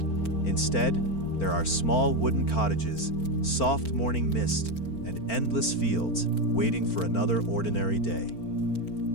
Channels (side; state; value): right; late; 4.4 ms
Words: Instead, there are small wooden cottages, soft morning mist, and endless fields waiting for another ordinary day.